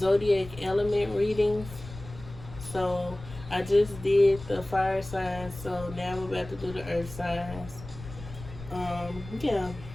element readings. So I just did the fire signs, so now I'm about to do the earth signs. Yeah.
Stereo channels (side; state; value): left; noise; rumble, 14 dB below the sound